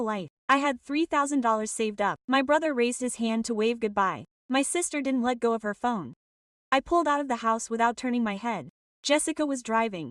life. I had $3,000 saved up. My brother raised his hand to wave goodbye. My sister didn't let go of her phone. I pulled out of the house without turning my head. Jessica was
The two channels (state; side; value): identical; both; correlation 1.00